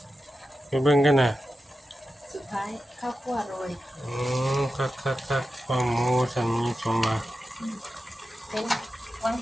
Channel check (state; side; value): normal; both; correlation 0.91